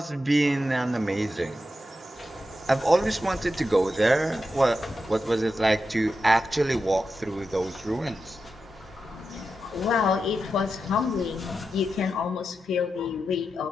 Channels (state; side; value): normal; both; correlation 0.89